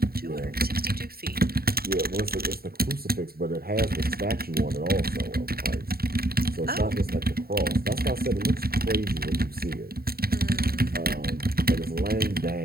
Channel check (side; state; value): left; late; 0.44 ms